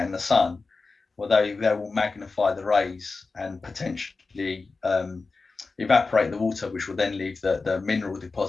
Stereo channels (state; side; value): quieter; right; 4.0 dB